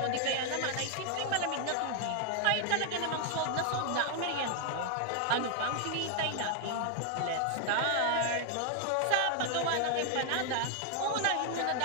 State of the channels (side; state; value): both; different; correlation 0.00